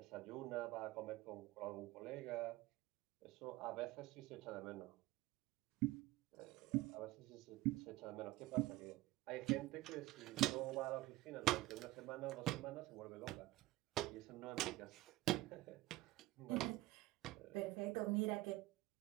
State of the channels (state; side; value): quieter; left; 18.2 dB